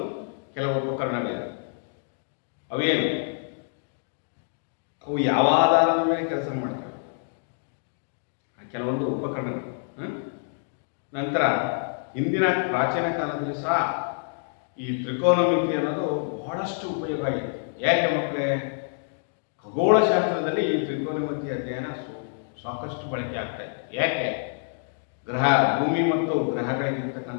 ಕೆಲವು ಉಪಕರಣಗಳಿವೆ. ಅವೇನು? ಅವು ಯಾವ ಆಧಾರದ ಮೇಲೆ ಕೆಲಸ ಮಾಡ್ತವೆ, ಕೆಲವೊಂದು ಉಪಕರಣಗಳು. ನಂತರ ಹಿಂದಿನ ಪ್ರಾಚೀನ ಕಾಲದಲ್ಲಿ ಸಹ ಈ ತ್ರಿಕೋನಮಿತಿ ಅನ್ನೋದು ಬಹಳಷ್ಟು ಉಪಯೋಗ ಆಗಿದೆ. ಯಾಕೆ ಮಕ್ಕಳೇ? ಖಗೋಳಶಾಸ್ತ್ರದಲ್ಲಿ ಈ ತ್ರಿಕೋನಮಿತಿ ಅಧ್ಯಯನ ಸಾಕಷ್ಟು ಬಳಕೆ ಆಗ್ತಾ ಇದೆ. ಯಾಕೆ? ಭೂಮಿ ಮತ್ತು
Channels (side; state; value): right; silent; digital silence